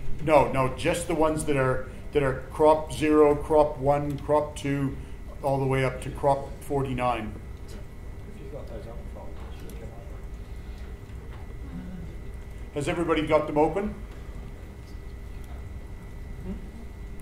No, just the ones that are crop 0, crop 1, crop 2, all the way up to crop 49. Has everybody got them open?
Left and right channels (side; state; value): both; identical; correlation 1.00